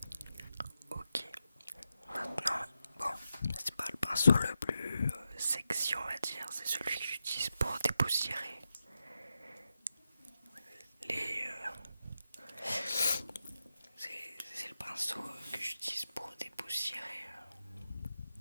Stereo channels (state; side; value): inverted; both; correlation -0.88